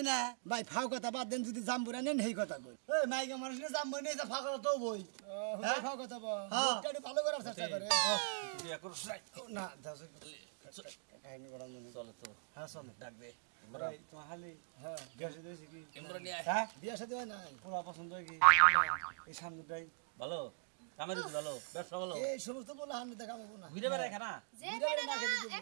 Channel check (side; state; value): left; silent; digital silence